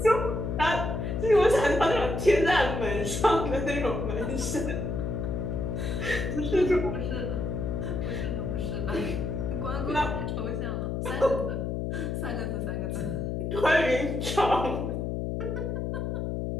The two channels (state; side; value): noise; left; hum, 2 dB below the sound